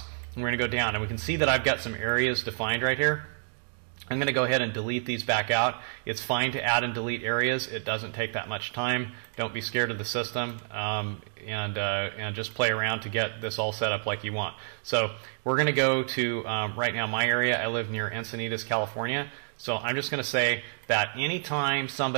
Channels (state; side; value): silent; left; digital silence